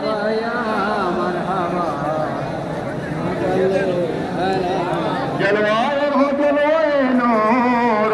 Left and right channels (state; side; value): identical; both; correlation 1.00